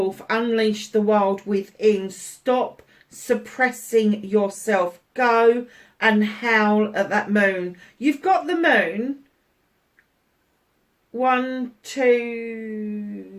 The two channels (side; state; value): both; identical; correlation 1.00